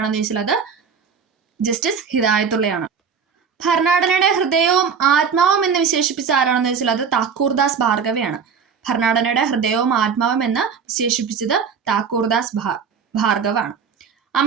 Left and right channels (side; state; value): left; quieter; 6.4 dB